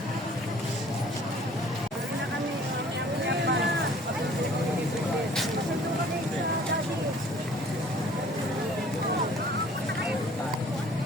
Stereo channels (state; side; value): normal; both; correlation 0.53